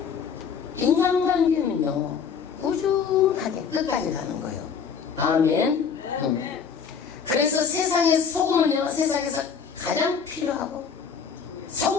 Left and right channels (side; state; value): right; quieter; 6.5 dB